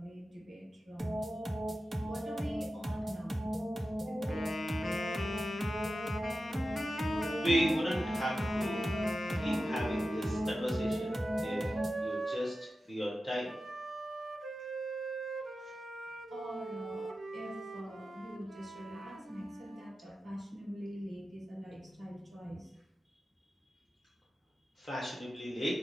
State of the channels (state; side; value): normal; both; correlation 0.93